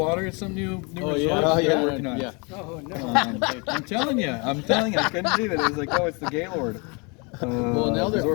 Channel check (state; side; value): quieter; right; 31.3 dB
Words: It's some new resort they're working on. Yeah. Oh, no. I'm telling you, I couldn't believe it. It was like, oh, it's the Gaylord. Well, now they're resort.